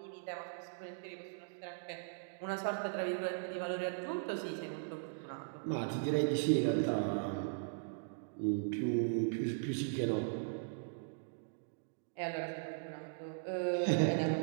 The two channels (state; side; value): silent; left; digital silence